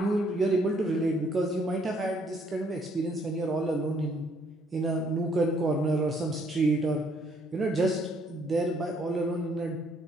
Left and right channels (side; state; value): both; normal; correlation 0.67